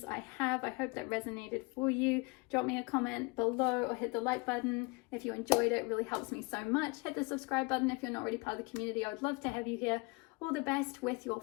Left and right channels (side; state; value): right; quieter; 27.5 dB